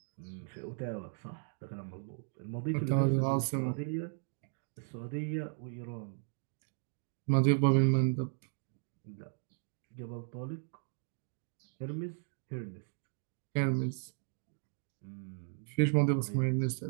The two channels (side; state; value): left; silent; digital silence